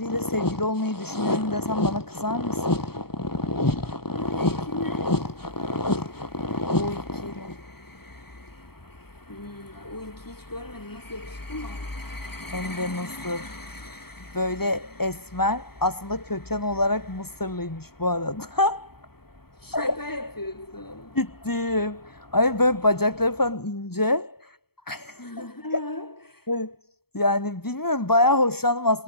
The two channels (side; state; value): right; late; 0.96 ms